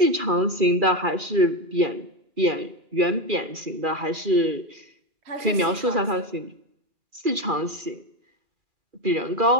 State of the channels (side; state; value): left; late; 2.4 ms